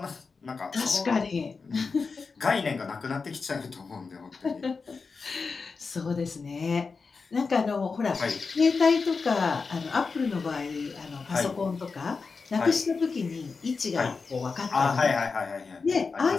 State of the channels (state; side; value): quieter; right; 4.7 dB